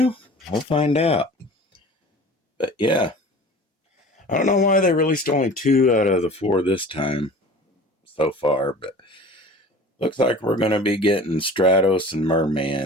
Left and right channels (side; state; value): both; normal; correlation 0.41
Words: We'll find out. But yeah, I don't know why they released only 2 out of the 4 this time so far, but looks like we're going to be getting Stratos and